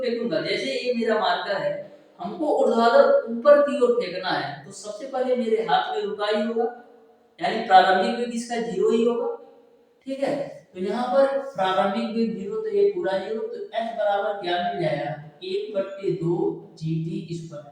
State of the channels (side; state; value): both; identical; correlation 1.00